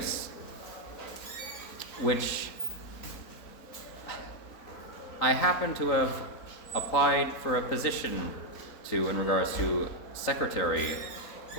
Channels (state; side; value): late; right; 3.8 ms